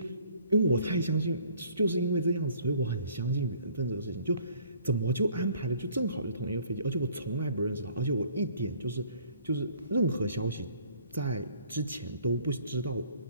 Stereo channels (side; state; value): both; inverted; correlation -0.57